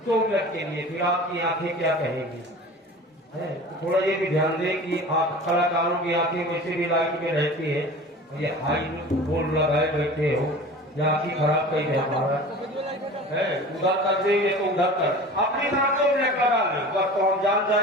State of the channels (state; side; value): normal; both; correlation 0.38